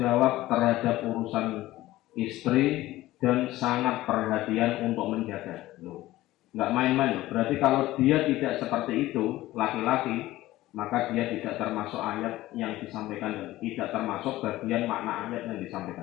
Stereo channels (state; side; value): quieter; right; 16.5 dB